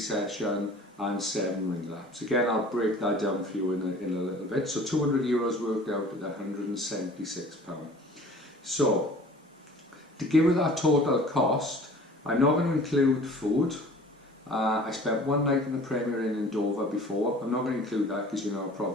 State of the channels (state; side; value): normal; both; correlation 0.47